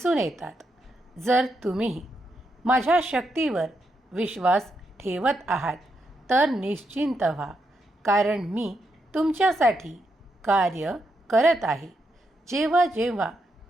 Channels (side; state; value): both; normal; correlation 0.82